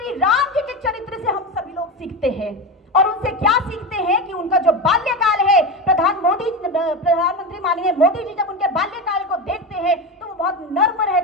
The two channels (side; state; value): both; normal; correlation 0.19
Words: राम जी के चरित्र से हम सभी लोग सीखते हैं, और उनसे क्या सीखते हैं कि उनका जो बाल्यकाल है, प्रधानमंत्री माननीय मोदी जी जब उनके बाल्यकाल को देखते हैं तो वो बहुत नर्म